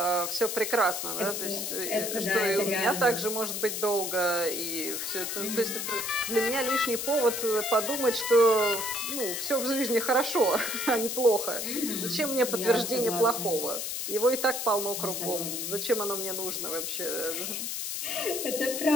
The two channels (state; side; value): noise; left; hiss, 3 dB below the sound